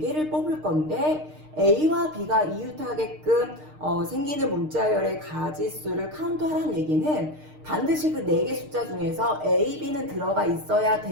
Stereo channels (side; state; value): left; late; 6.5 ms